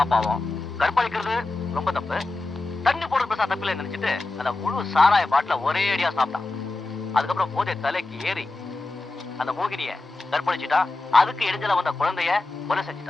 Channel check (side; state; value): right; quieter; 3.2 dB